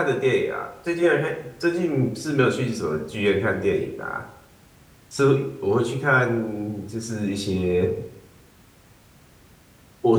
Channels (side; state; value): both; identical; correlation 1.00